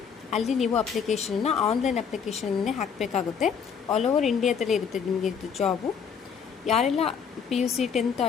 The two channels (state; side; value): quieter; right; 6.9 dB